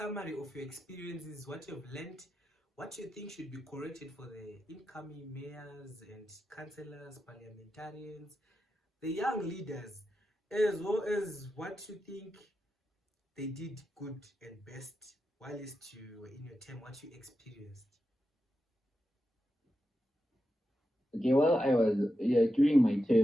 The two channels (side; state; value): both; normal; correlation 0.89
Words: of your experiences, what you've learned, what you think should be corrected for the incoming mayors and councillors, parliamentarians, the young leaders, as well as what you think they did good and best whilst you were in your term, what you experienced. Okay, well, during my